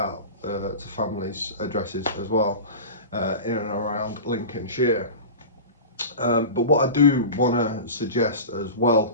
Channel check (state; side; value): inverted; both; correlation -0.31